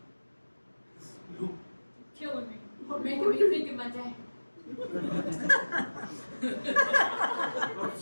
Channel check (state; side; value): inverted; both; correlation -1.00